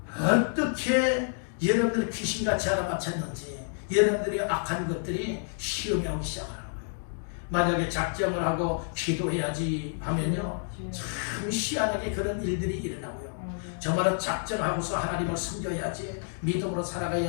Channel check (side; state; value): right; silent; digital silence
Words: 어떻게 여러분들이 귀신같이 알아맞혔는지 여러분들이 악한 것들이 시험이 오기 시작하는 거예요. 만약에 작정을 하고 기도해야지 하면요. 참 희한하게 그런 일들이 일어나고요. 정말로 작정하고서 하나님을 섬겨야지, 믿음으로